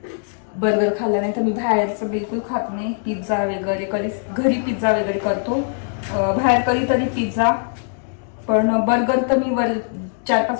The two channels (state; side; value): silent; right; 65 dB below the other